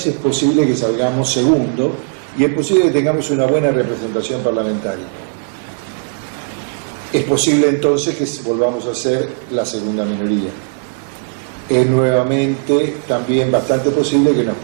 es posible que salgamos segundo y es posible que tengamos una buena representación parlamentaria. Es posible entonces que volvamos a ser la segunda minoría. Es nuevamente también bastante posible que nos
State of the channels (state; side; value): silent; left; 61 dB below the other